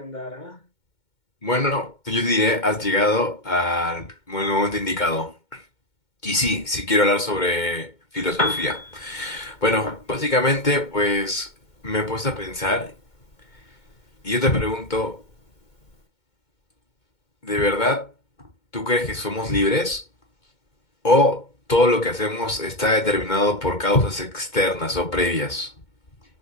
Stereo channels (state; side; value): late; right; 2.2 ms